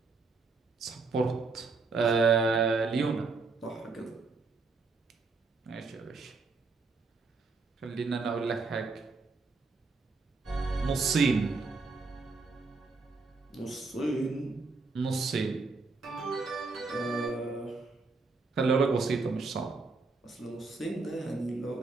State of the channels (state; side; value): quieter; left; 4.1 dB